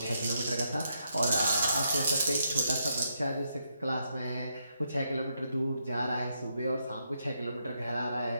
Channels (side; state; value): both; inverted; correlation -0.79